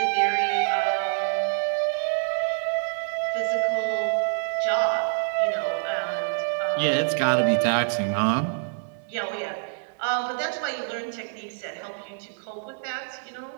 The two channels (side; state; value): left; silent; digital silence